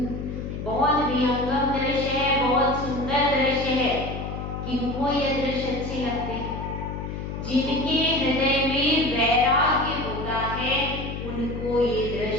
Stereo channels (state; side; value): noise; left; hum, 6 dB below the sound